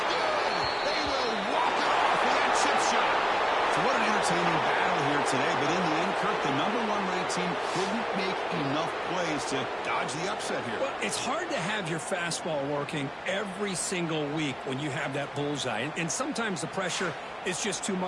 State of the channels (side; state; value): both; identical; correlation 1.00